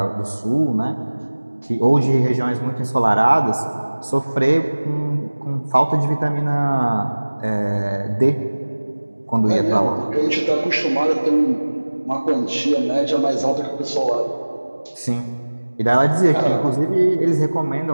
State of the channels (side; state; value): both; inverted; correlation -1.00